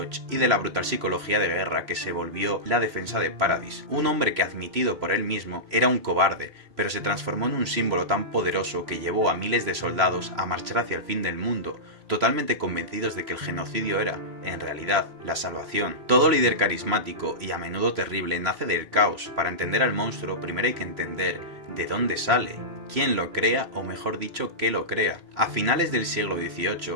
y de la brutal psicología de guerra que se volvió la defensa de Paradis. Un hombre que, admitido por él mismo, era un cobarde, pero se transformó en un símbolo tan poderoso que llevó a miles de soldados a marchar hacia el fin del mundo, totalmente convencidos de que el genocidio era, en realidad, la salvación. Todo líder carismático y a menudo terrible nace del caos. Para entender al monstruo, primero hay que entender de dónde sale, quién lo crea o mejor dicho, qué lo crea. A finales del siglo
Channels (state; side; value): late; left; 3.0 ms